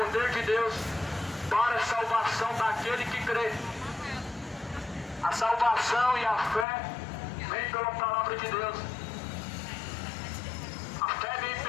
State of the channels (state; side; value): drops out; right; at 6.7 s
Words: de Deus para a salvação daquele que crê. A salvação e a fé vem pela palavra de Deus. A fé vem